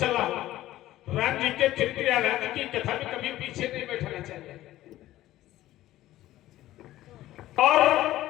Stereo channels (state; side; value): quieter; right; 15.0 dB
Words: हो राम जी के चरित्र या राम जी की कथा में कभी पीछे नहीं बैठना चाहिए और